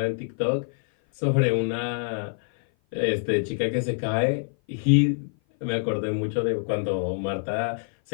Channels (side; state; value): right; silent; 56 dB below the other